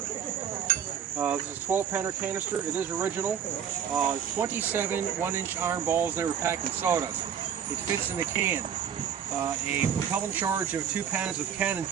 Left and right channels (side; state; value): left; quieter; 8.3 dB